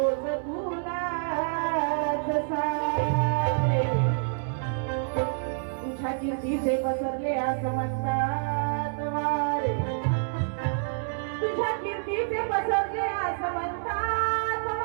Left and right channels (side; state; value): left; silent; 60 dB below the other